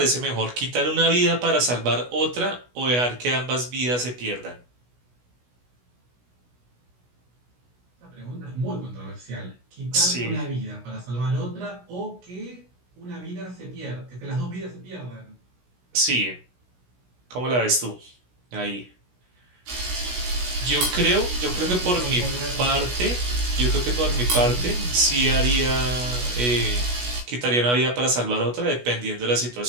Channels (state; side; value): late; left; 16 ms